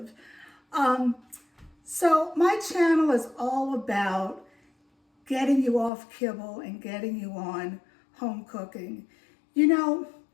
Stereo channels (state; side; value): drops out; right; at 5.9 s